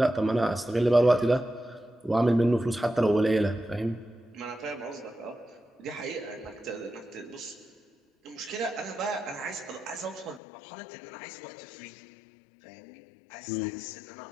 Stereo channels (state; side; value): drops out; right; at 10.4 s